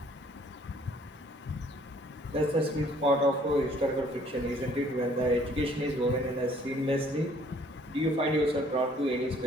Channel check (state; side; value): normal; both; correlation 0.59